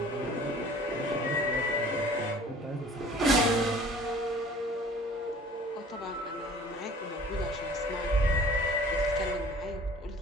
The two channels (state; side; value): normal; both; correlation 0.48